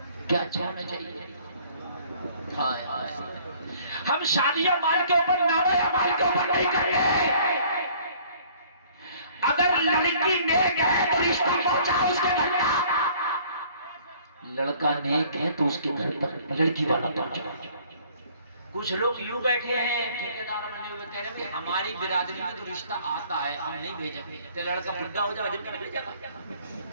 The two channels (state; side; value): inverted; both; correlation -0.56